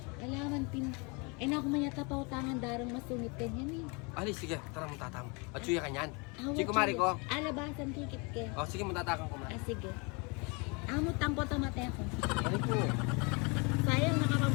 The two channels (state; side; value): quieter; right; 30.5 dB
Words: Alaman pin. Eh na ako manyata pa utangan darang masungit kanyan eh. Ali, sige. Tara mong tatang. At suya kanyan. Awa, Sige, kumari ko. Alabasan kikit ke. Oh, sige, mong tatakang kumari. Ah, sige. Amo tangko tamate ako. Ali po. Sayang